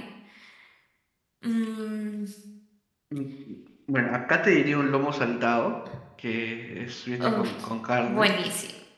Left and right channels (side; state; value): both; identical; correlation 1.00